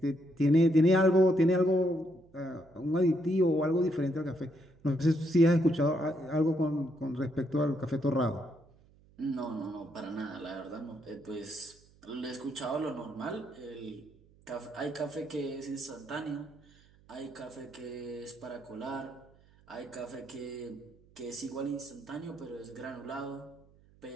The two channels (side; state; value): right; noise; hum, 28 dB below the sound